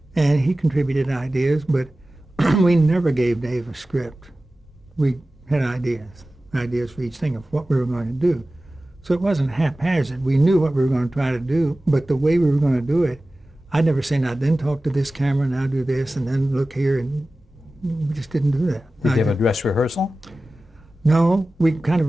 And he contributed ideas, but we never gave Dave a script. We had ideas for each thing of what we were going to do. So it wasn't haphazard. We knew what we were going to try to do, but the way we were going to do it, I'd never say, now then talk to this camera, now do this, and then look here, and we just didn't do that. Did you have a dress rehearsal? No, we kind of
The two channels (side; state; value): both; normal; correlation 0.96